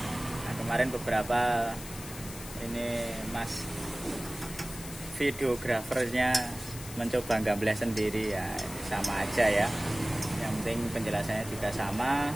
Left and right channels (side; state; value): left; noise; hiss, 13 dB below the sound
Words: kemarin beberapa ini Mas videografernya mencoba gambar sendiri ya, sama aja ya. Yang penting penjelasannya juga sama.